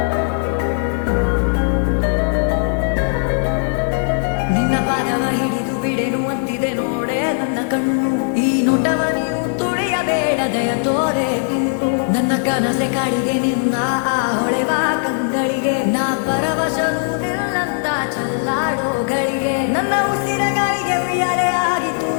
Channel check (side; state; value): right; silent; 67 dB below the other